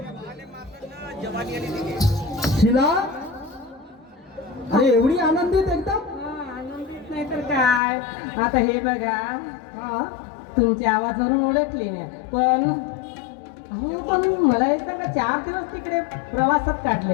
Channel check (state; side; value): drops out; right; at 7.8 s